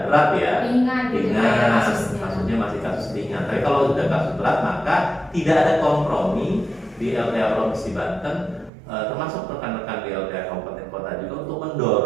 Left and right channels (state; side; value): drops out; left; at 8.7 s